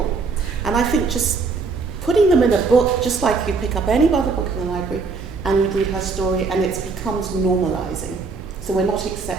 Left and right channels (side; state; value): left; quieter; 4.5 dB